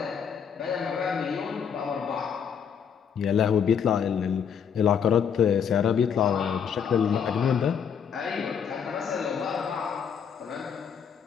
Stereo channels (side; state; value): right; quieter; 7.4 dB